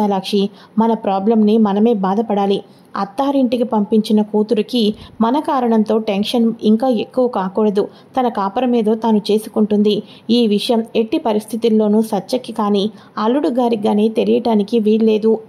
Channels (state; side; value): identical; both; correlation 1.00